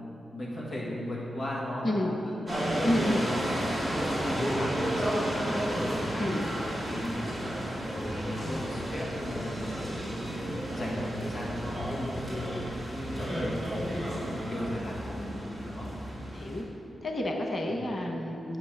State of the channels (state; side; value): normal; both; correlation 0.90